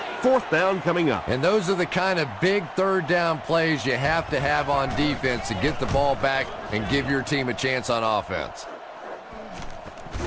4th down coming up. And those are the kind of big 3rd down plays you have to have on defense to get the ball back and give your team a chance on offense.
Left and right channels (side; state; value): both; identical; correlation 1.00